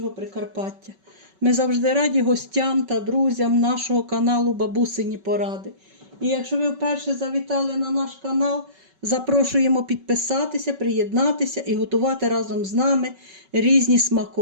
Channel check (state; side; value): late; left; 5.3 ms